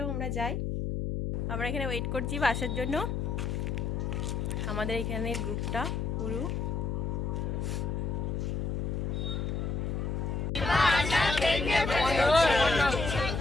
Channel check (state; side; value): noise; left; hum, 1 dB below the sound